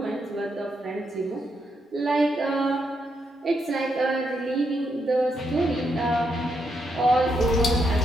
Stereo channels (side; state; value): both; normal; correlation 0.79